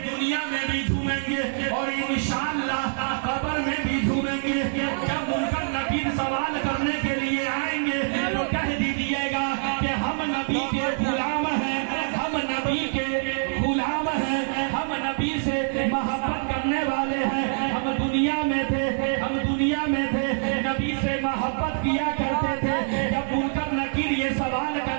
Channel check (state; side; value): silent; left; digital silence